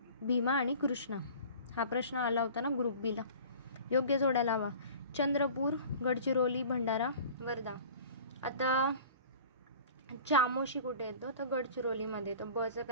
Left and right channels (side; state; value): both; inverted; correlation -0.43